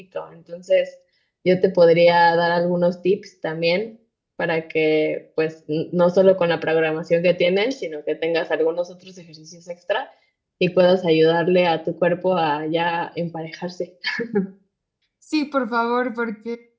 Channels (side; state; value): both; identical; correlation 1.00